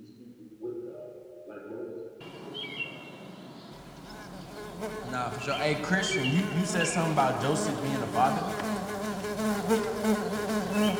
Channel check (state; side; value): identical; both; correlation 1.00